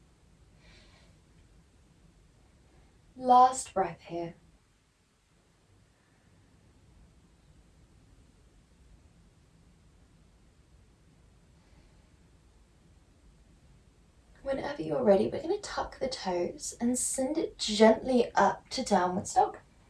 Last breath here. Whenever you're ready, we're going to tuck the toes and send it gently up to downwards dog.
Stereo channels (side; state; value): both; identical; correlation 1.00